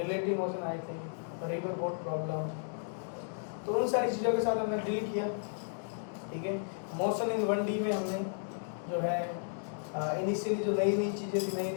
मोशन आए थे, रिवर बोट प्रॉब्लम, तो उन सारी चीज़ों के साथ हमने डील किया, ठीक है। मोशन इन 1D में हमने जो है इनिशियली जो नई नई चीज़ें थी, नई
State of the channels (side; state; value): right; silent; digital silence